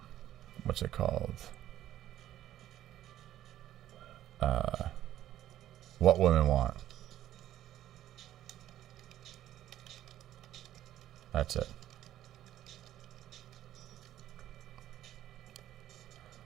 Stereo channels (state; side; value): quieter; left; 12.7 dB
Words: What's it called? What Women Want. That's it.